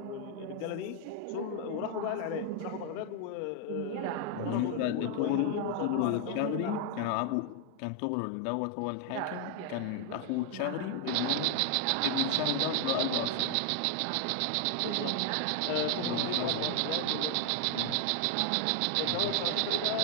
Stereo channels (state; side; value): different; both; correlation 0.00